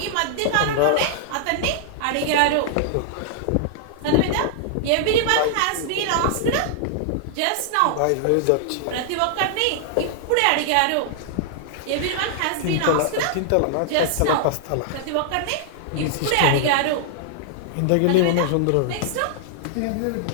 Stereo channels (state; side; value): different; both; correlation -0.01